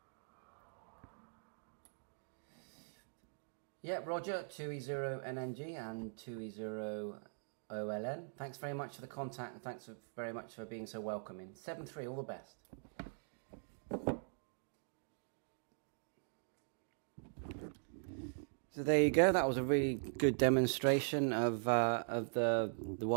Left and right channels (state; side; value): silent; left; digital silence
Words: Yeah, Roger, 2E0NNG and 2E0OLN. Thanks very much for the contact, and thanks very much for being so welcoming. 73, all the best. So there you go. That was a really good demonstration of the